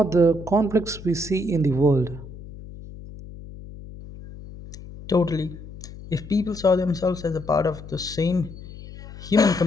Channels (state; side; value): noise; left; hum, 15 dB below the sound